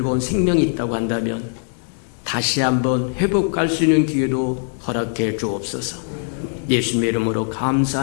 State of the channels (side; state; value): right; silent; 63 dB below the other